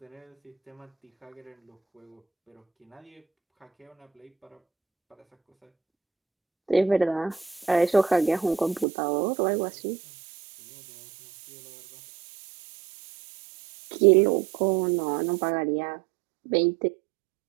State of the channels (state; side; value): drops out; left; at 8.8 s